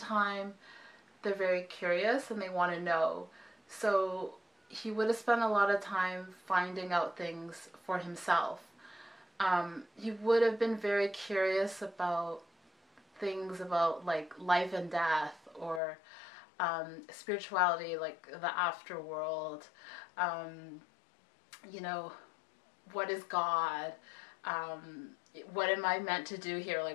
they're very curious and they want to know. So he would have spent a lot of time finding out things for himself. He would have been very curious about things about like life and death, or spirituality, like the afterworld. You know, what is God? What am I meant to do here?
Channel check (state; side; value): drops out; right; at 15.8 s